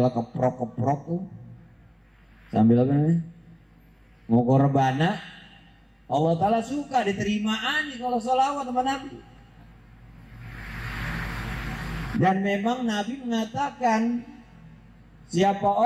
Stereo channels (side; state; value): both; identical; correlation 1.00